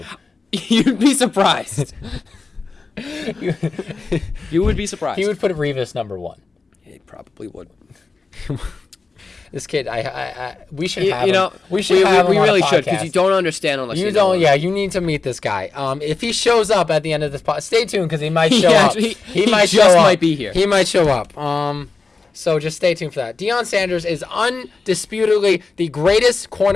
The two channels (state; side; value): quieter; right; 4.1 dB